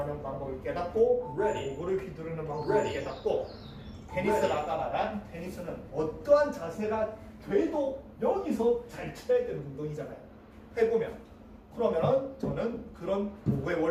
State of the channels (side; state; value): both; identical; correlation 1.00